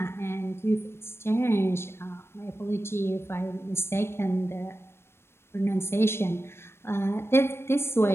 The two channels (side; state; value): right; late; 0.12 ms